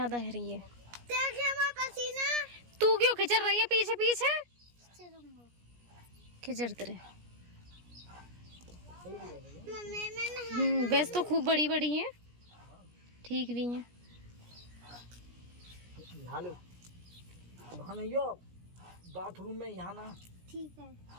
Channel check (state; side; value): late; left; 17 ms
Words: है रही है। देखिए मैं पसीना। तू क्यों खिचड़ रही है पीछे पीछे? खिचड़ते रहे। मम्मी मैं वैसे तो खूब बड़ी बड़ी हैं, ठीक भी हैं। नहा लो, वहाँ नहीं हो, बाथरूम में यहाँ ना। ठीक है।